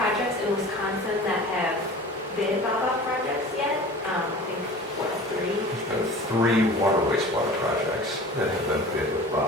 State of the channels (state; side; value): normal; both; correlation 0.40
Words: in Wisconsin that have bid BABA projects yet. I think, what, 3? There's been 3 water wastewater projects that have been bid with